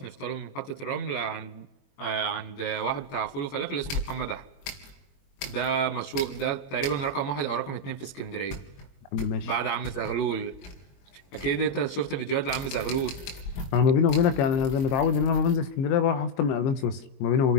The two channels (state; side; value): late; right; 22 ms